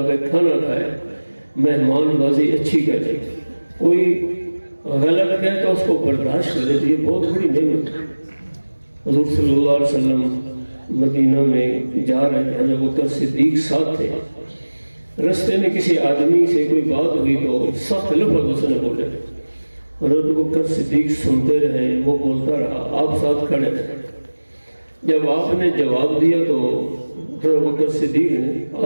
کھانا کھائے، مہمان بازی اچھی کرے، کوئی غلط کہے تو اس کو برداشت کرے، تو یہ بہت بڑی نعمت ہے۔ حضور صلی اللہ علیہ وسلم مدینہ میں جا رہے ہیں، جب بکر صدیق ساتھ تھے، رستے میں کسی آدمی سے کوئی بات ہوئی تو سخت لفظ اس نے بولے۔ حضرت بکر صدیق سنتے رہے، وہ بولتا رہا، آپ ساتھ کھڑے رہے۔ جب آپ نے جواب دیا تو حضرت بکر صدیق نے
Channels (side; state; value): both; inverted; correlation -1.00